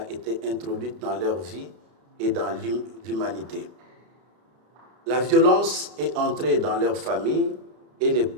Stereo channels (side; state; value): left; late; 32 ms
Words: été introduite dans leur vie et dans l'humanité. La violence est entrée dans leur famille et le